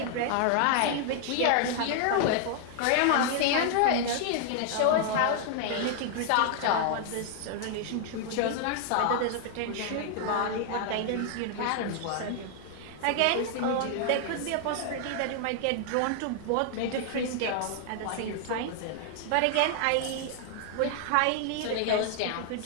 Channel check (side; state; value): both; different; correlation 0.00